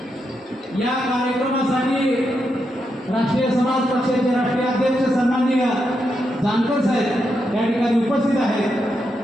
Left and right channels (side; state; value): both; normal; correlation 0.83